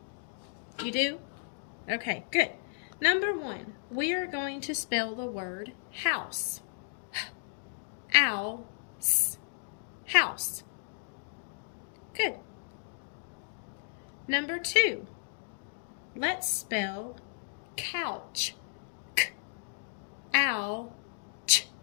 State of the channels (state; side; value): silent; right; digital silence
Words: You do? Okay, good. Number 1, we are going to spell the word house. Owl, house. Good. Number 2, let's spell couch. Owl,